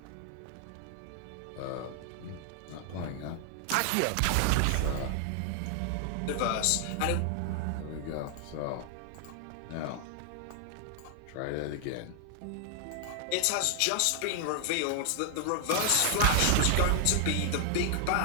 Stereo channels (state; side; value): different; both; correlation 0.00